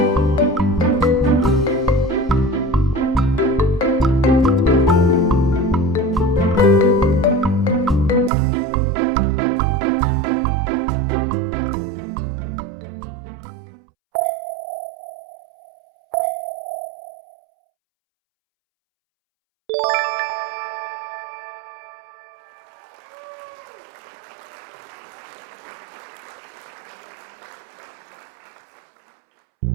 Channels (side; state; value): left; drops out; at 8.3 s